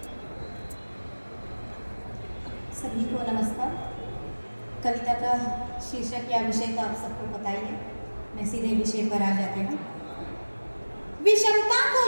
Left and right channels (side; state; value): both; inverted; correlation -1.00